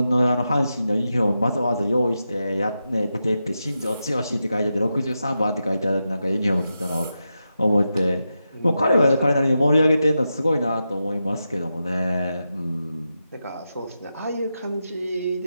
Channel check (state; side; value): inverted; both; correlation -0.89